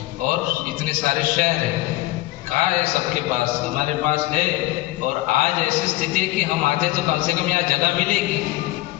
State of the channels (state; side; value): quieter; right; 17.8 dB